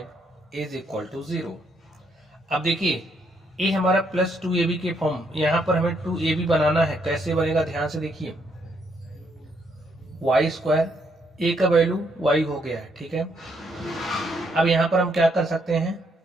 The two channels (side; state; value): both; normal; correlation 0.74